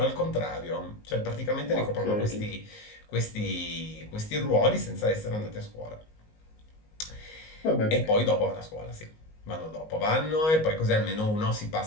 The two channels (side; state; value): right; late; 19 ms